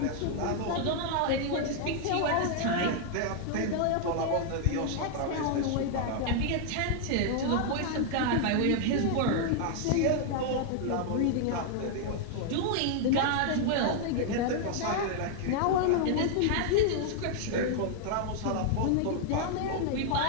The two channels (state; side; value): different; both; correlation 0.00